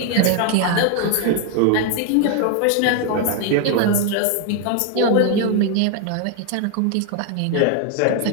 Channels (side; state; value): both; different; correlation 0.00